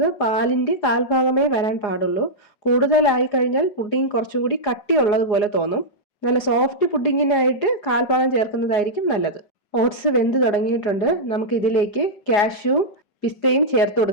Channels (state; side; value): late; right; 4.9 ms